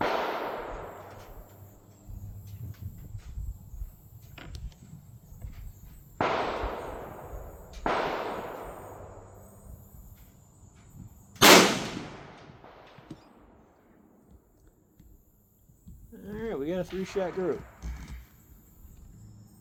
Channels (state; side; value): identical; both; correlation 1.00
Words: got a 3-shot group.